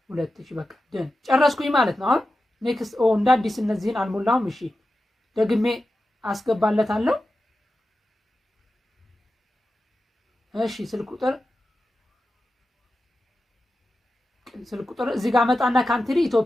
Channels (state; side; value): normal; both; correlation 0.92